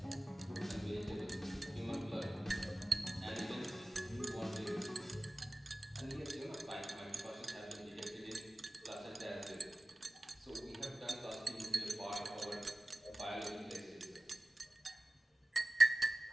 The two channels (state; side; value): normal; both; correlation 0.96